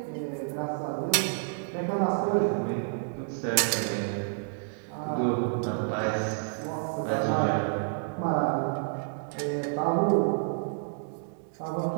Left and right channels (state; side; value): silent; left; digital silence